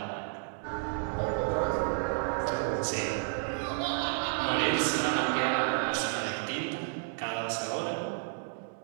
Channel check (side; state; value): left; silent; digital silence